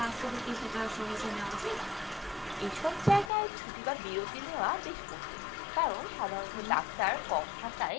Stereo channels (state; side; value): drops out; right; at 3.3 s